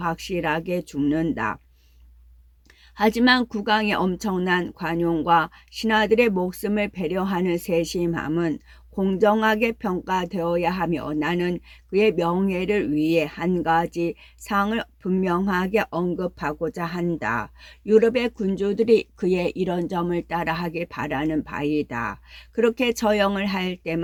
죽는다. 하지만 국왕의 엄청난 관용과 신하들의 목숨을 배려하는 세심함은 공정하게 평가되어야 하며 나는 그의 명예를 위해 한 가지 사항을 분명하게 언급하고자 한다. 유럽의 군주들이 그의 이런 점을 따라하길 바라는 바이다. 그렇게 처형을 할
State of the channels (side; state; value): both; identical; correlation 1.00